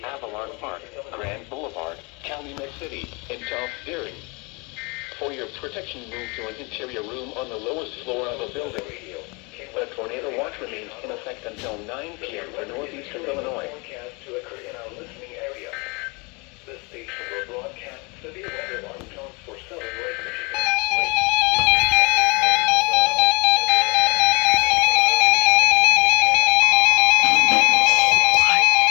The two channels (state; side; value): quieter; right; 29.0 dB